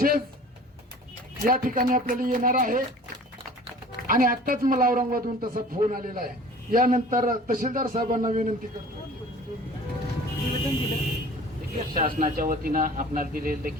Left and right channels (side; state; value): both; normal; correlation 0.45